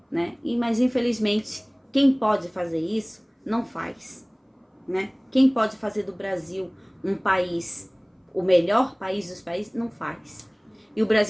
né? Mas infelizmente, quem pode fazer isso, não faz, né? Quem pode fazer do Brasil um país, o melhor país dos países, não faz. E o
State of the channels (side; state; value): both; identical; correlation 1.00